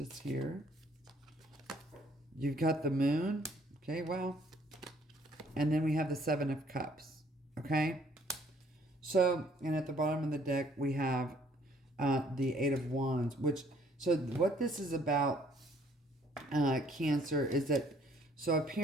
here. You've got the Moon. Okay, well. And then we have the Seven of Cups. Okay. So, and at the bottom of the deck, we have the Eight of Wands. So what this is about, Cancer, is that, so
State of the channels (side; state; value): both; normal; correlation 0.62